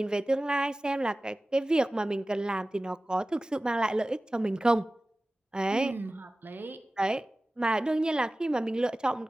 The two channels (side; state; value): both; normal; correlation 0.97